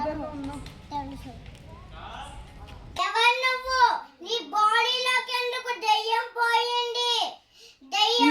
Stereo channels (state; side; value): identical; both; correlation 1.00